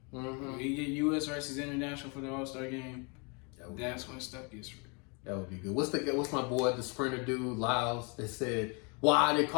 Mm-hmm. We get U.S. versus international for the All-Star game. That's when stuff gets real. That would be good. What's my boy, the sprinter dude, Lyles, that said, why they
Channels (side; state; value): right; quieter; 33.0 dB